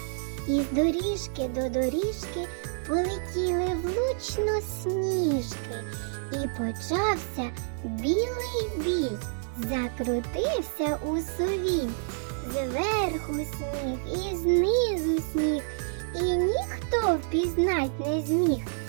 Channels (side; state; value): left; silent; digital silence